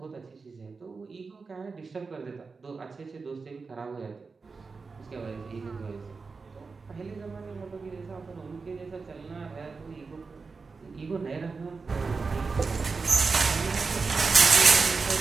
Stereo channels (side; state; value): left; quieter; 4.6 dB